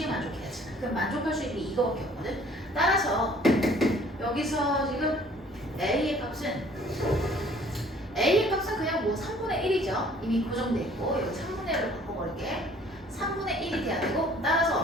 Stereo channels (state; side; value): normal; both; correlation 0.55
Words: 만족해야지. 그럼 만족할 수 있는 게 이거밖에 없거든. 따라서 여기서 지금 A의 값은 그냥 뭐 3분의 1이죠. 이미 고정돼 있고 여기 3분의 1로 바꿔버릴게. 3분의 1이 돼야 되고